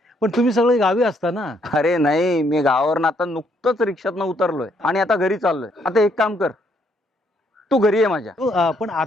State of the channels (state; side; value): normal; both; correlation 0.71